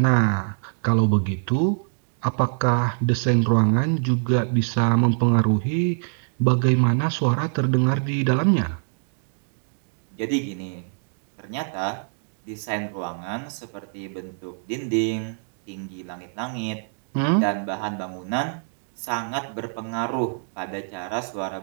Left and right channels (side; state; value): left; silent; digital silence